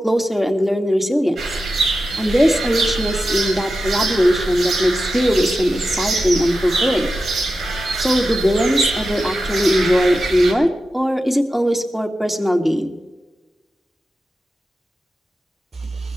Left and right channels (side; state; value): both; normal; correlation 0.91